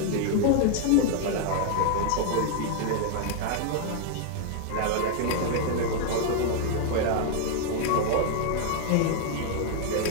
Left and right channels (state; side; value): different; both; correlation 0.00